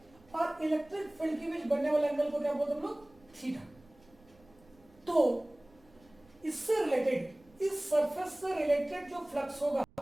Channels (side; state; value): right; noise; rumble, 28 dB below the sound